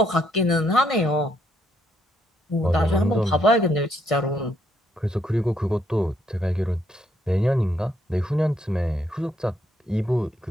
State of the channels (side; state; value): both; normal; correlation 0.73